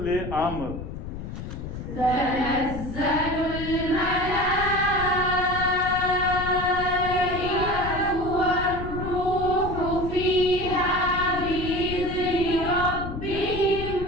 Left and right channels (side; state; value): left; noise; rumble, 8 dB below the sound